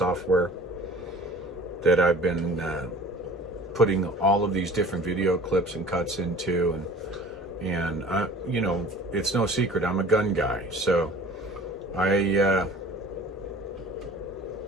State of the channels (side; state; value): both; normal; correlation 0.46